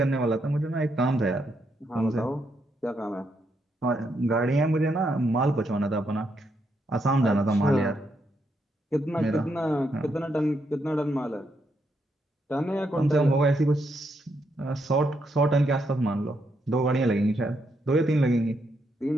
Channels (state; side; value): normal; both; correlation 0.79